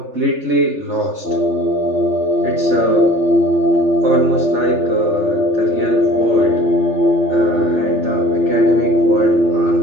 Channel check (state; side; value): late; left; 3.4 ms